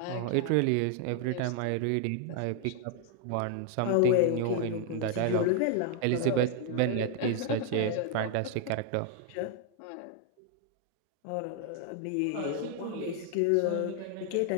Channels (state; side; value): different; both; correlation 0.00